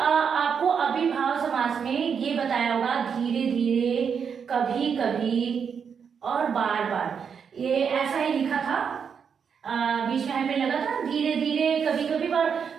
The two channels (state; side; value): quieter; left; 6.8 dB